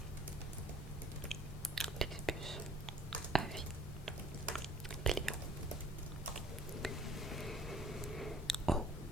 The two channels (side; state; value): both; normal; correlation 0.54